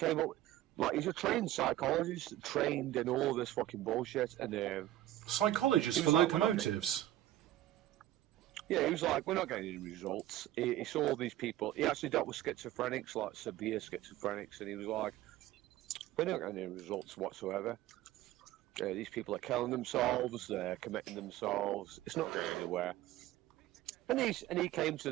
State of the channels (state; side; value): quieter; left; 14.2 dB